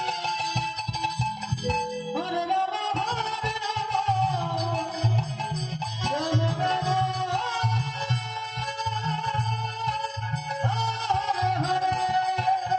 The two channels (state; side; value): identical; both; correlation 1.00